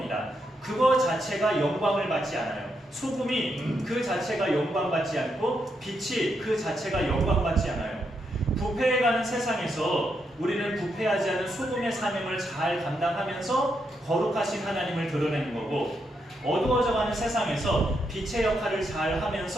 그거 자체가 영광을 받지 않아요. 소금이 그 자체가 영광받지 않고 빛이 그 자체가 영광받지 않아요. 부패해가는 세상에서 우리는 부패하지 않은 소금의 사명을 잘 감당하면서 거룩하신 하나님을 드러내는 거고 어두워져가는 세상에서 빛의 역할을 잘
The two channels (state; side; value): normal; both; correlation 0.81